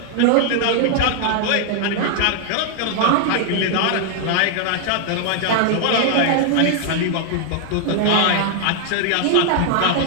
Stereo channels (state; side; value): different; both; correlation 0.00